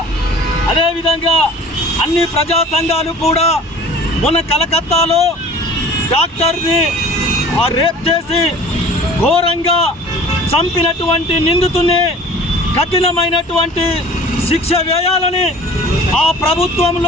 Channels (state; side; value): normal; both; correlation 0.45